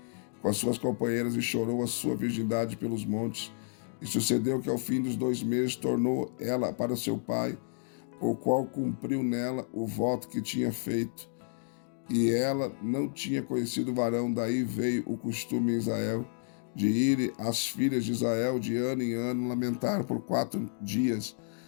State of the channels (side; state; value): right; silent; digital silence